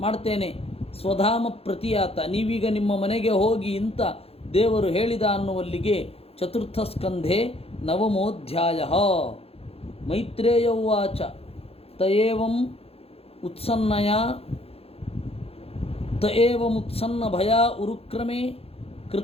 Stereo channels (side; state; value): right; late; 0.29 ms